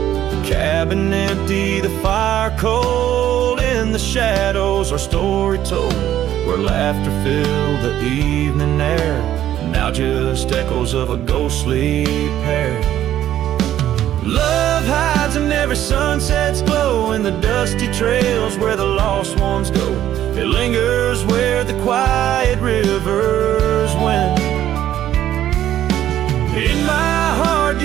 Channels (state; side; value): quieter; left; 11.9 dB